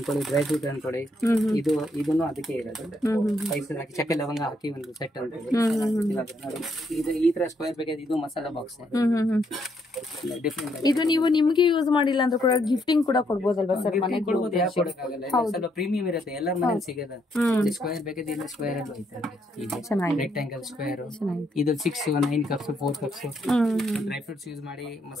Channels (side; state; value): both; normal; correlation 0.74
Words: ಡ್ರೈ ಫ್ರೂಟ್ ಅನ್ಕೊಳ್ಳಿ, ಇದನ್ನು ಅದಕ್ಕೆ ಇರೋದು. ಸ್ಪೈಸಸ್ ಹಾಕಿ ಚಕ್ಕೆ ಲವಂಗ ಹಾಕಿ ಒಂದು ಸೆಟ್ ಅನ್ಕೊಳ್ಳಿ. ಇದು ಈ ತರ ಸ್ಕ್ವೇರ್ ಬೇಕಾದ್ರೆ ಇದು ಮಸಾಲಾ ಬಾಕ್ಸ್ ಡಿಫ್ರೆಂಟ್. ಇದು ನೀವು ನಿಮ್ಗೆ ಯೂಸ್ ಮಾಡಿಲ್ಲ ಅಂದ್ರೆ ಕೂಡ ಗಿಫ್ಟಿಂಗ್ ಕೂಡ ಕೊಡ್ಬೋದಲ್ವಾ ಸರ್? ಮನೆಗೆ ಕೊಡ್ಬೋದು, ಯಾಕೆ ಕೊಡಕ್ಕಾಗಲ್ಲ? ಸ್ವಲ್ಪ ಪ್ರೀಮಿಯಂ ಇರುತ್ತೆ, ಎಲ್ಲರ ಮನೇಲಿ ಸಿಗಲ್ಲ. ಸ್ಕ್ವೇರ್ ಬೇಕಾದ್ರೆ ಇಲ್ಲ, ಸ್ಕ್ವೇರ್ ಅಲ್ಲಿ ಹೋಯ್ತಾರೆ. ರೆಕ್ಟಾಂಗಲ್ ಸ್ಕ್ವೇರ್ ಇದು 6 9 cups 4 cups dry fruits use ಮಾಡಿ,